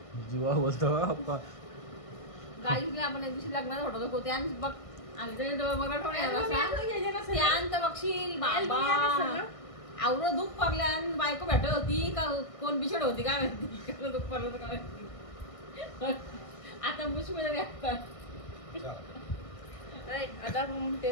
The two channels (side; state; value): right; late; 1.5 ms